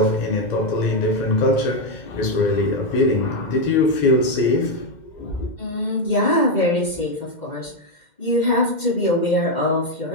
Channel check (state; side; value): late; right; 2.1 ms